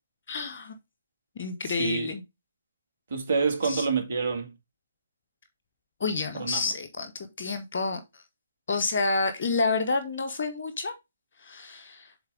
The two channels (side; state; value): both; inverted; correlation -0.68